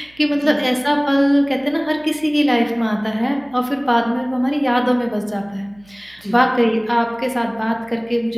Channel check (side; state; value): right; noise; hum, 29 dB below the sound